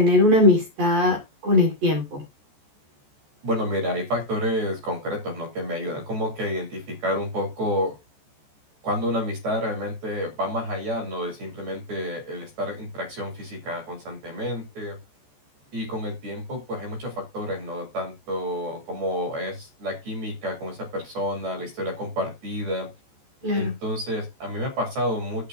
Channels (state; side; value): late; left; 14 ms